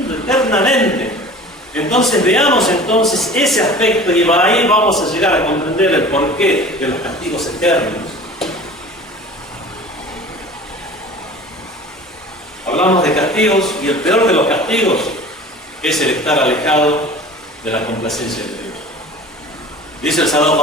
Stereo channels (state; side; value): normal; both; correlation 0.41